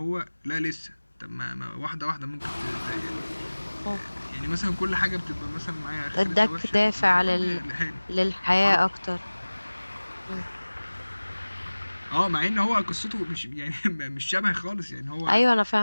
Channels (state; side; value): inverted; both; correlation -1.00